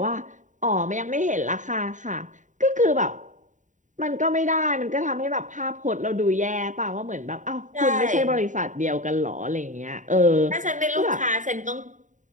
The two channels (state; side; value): late; left; 0.36 ms